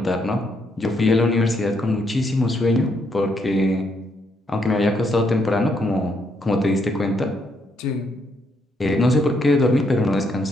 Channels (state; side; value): normal; both; correlation 0.75